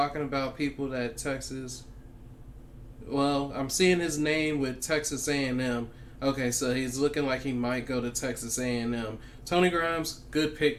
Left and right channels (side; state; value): both; identical; correlation 1.00